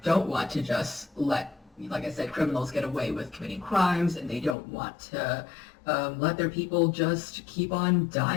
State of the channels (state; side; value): drops out; right; at 4.5 s